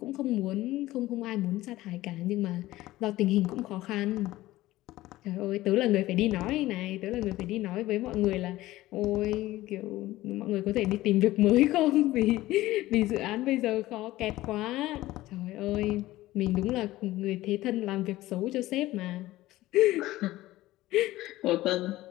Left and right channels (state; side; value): quieter; right; 16.7 dB